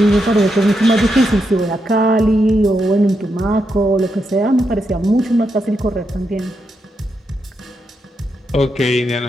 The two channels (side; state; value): both; normal; correlation 0.83